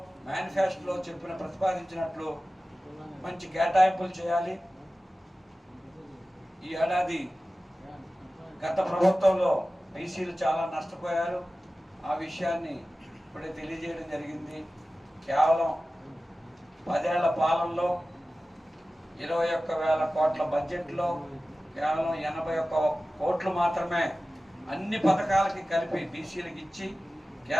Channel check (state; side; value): normal; both; correlation 0.96